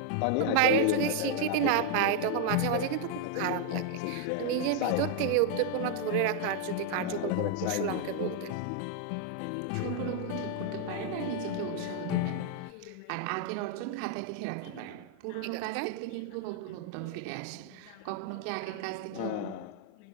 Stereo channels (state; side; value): different; both; correlation 0.00